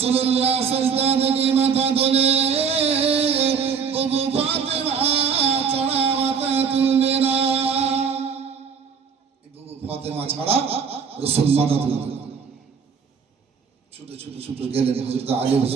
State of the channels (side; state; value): left; quieter; 6.4 dB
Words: সিজদা থেকে মাথা তোলে, বুবু ফাতেমা ছাড়া মাথা তুলবে না। বুবু ফাতেমা ছাড়া রাসূল মাথা তুলবে না। ছুটে ছুটে ছুটে গেলেন হযরত আলী